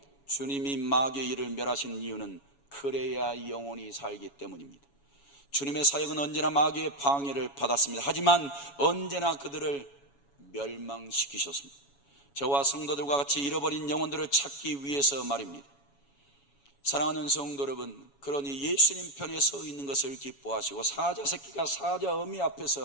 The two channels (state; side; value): late; right; 7.1 ms